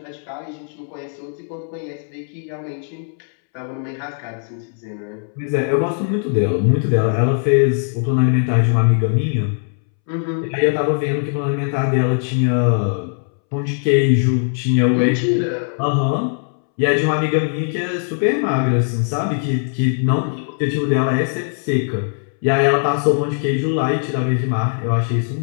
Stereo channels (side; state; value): right; silent; 66 dB below the other